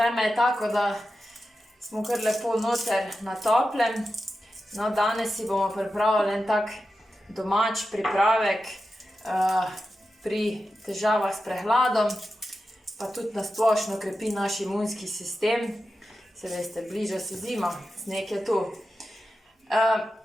je tako, da smo kar lepo noter na toplem. No, danes si bomo pripravili en tak domač pripravek pri težavah s prehladom, pa tudi na splošno krepi naš imunski sistem. Se veste, bliža se zima, sneg je tu.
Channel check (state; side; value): normal; both; correlation 0.91